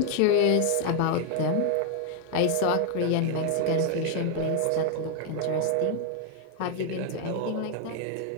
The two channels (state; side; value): different; both; correlation 0.00